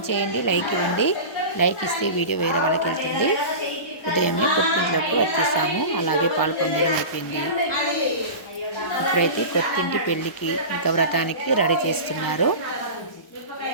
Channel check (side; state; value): right; late; 1.0 ms